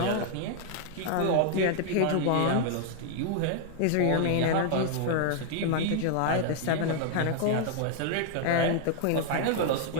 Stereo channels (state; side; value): different; both; correlation -0.01